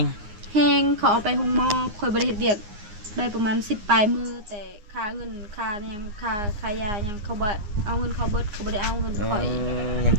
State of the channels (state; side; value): late; left; 9.7 ms